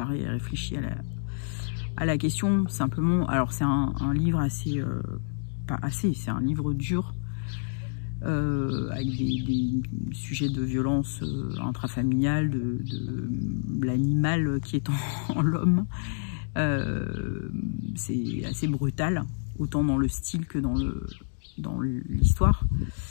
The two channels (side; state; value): right; silent; digital silence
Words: et réfléchi à la question. Simplement, alors c'est un livre assez, pas assez, c'est un livre dur. Avec des sujets de violence intrafamiliale, de l'animal qui est en l'homme. C'est assez brutal, autant dans le style que dans l'histoire.